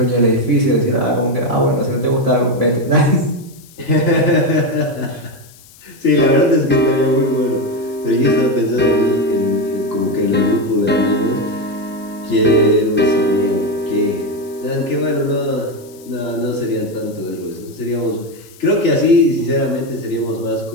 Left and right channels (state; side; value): noise; left; hiss, 24 dB below the sound